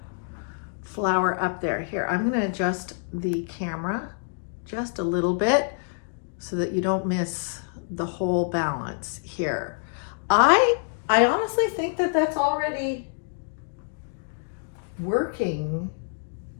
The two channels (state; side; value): silent; right; digital silence